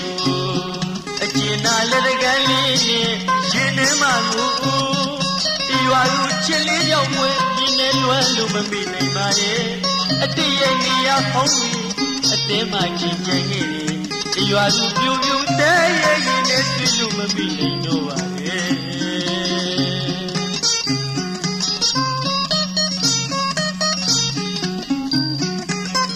ို့အကျဉ်းနာလက်တကန်းလေးနဲ့ရင်ထဲမှာကိုဒီရွာလူချစ်လေးကြောင့်ဝဲဒီနဲ့လွမ်းလို့မမိနိုင်ပါရဲ့အတည့်ရဲ့နေရာဖုံးပြီးအတင်းမှချင်းချင်ခဲ့တယ်ဒီရွာလူပြူပြူတဲရဲ့ရင်နဲ့တွေ့လို့မမိနိုင်တော့ပါရဲ့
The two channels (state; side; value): identical; both; correlation 1.00